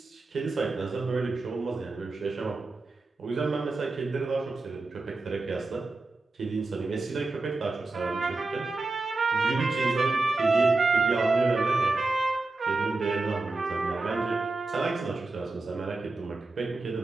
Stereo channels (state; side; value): quieter; left; 3.4 dB